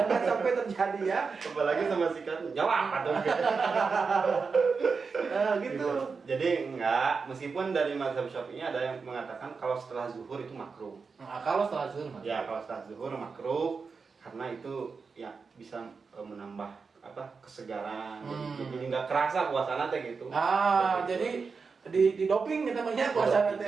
sampai terjadi ya. Apalagi sama sikatnya. Jawab atau gitu. Jadi enggak, meskipun dari mazhab Syafi'i ada yang mengatakan kalau setelah zuhur itu makruh. Kalau setelah zuhur makruh. Ya, kalau setelah zuhur makruh karena itu ya bisa menambah kesegaran. Jadi nggak kerasa puasana teh gitu. Jadi di doping kita namanya puasana teh.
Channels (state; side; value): quieter; left; 5.0 dB